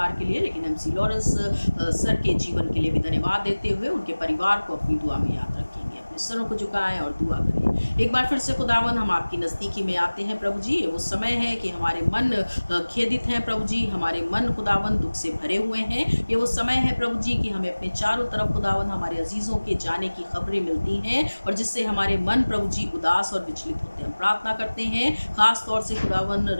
के लिए, लेकिन MC लॉरेंस सर के जीवन के लिए भी धन्यवाद देते हुए उनके परिवार को अपनी दुआ में याद रखेंगे। अपने सरों को झुकाएं और दुआ करें। एक बार फिर से खुदावन, हम आपकी नज़दीकी में आते हैं प्रभु जी। वो समय है कि हमारे मन खेदित हैं प्रभु जी, हमारे मन खुदावन दुख से भरे हुए हैं। ये वो समय है प्रभु जी कि हमें अपने चारों तरफ खुदावन हमारे अजीज़ों के जाने की खबरें मिलती हैं और जिससे हमारे मन प्रभु जी उदास और विचलित होते हैं। हम प्रार्थना करते हैं खास तौर से खुदावन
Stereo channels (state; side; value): inverted; both; correlation -1.00